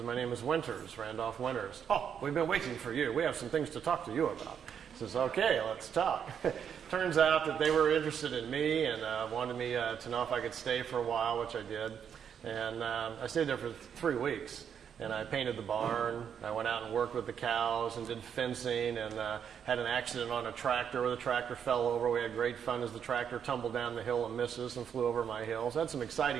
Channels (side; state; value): left; quieter; 7.9 dB